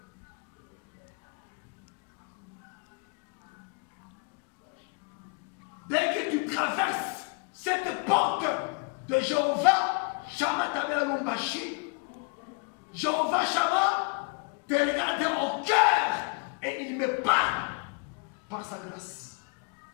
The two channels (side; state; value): right; quieter; 31.5 dB